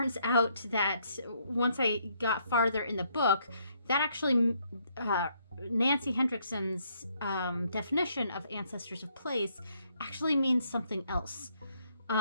out that once I got farther in the book, that actually Nancy Hendrickson's definition of ancestors of place actually means something else.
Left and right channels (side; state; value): both; inverted; correlation -0.71